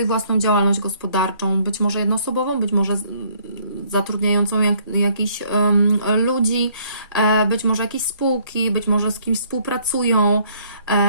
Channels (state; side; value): inverted; both; correlation -0.64